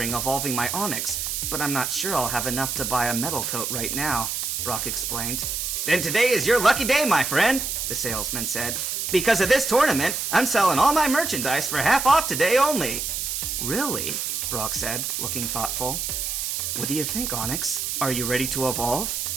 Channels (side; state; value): right; noise; hiss, 2 dB below the sound